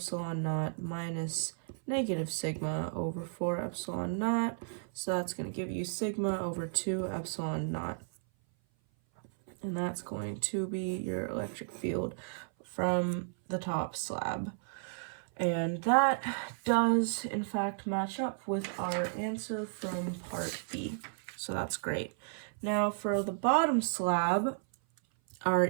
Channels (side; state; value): left; silent; 55 dB below the other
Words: naught minus negative sigma over 4 epsilon naught. So that's going to give you sigma over 2 epsilon naught. And that's going to be your electric field from the top slab. And that does, in fact, match up with our answer from part B. So that's great. Now for the bottom slab, our